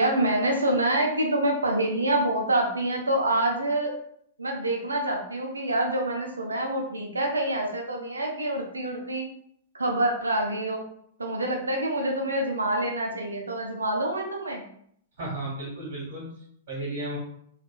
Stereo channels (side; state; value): both; inverted; correlation -0.53